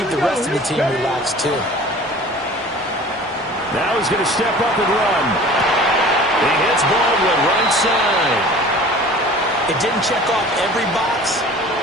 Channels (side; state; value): both; normal; correlation 0.44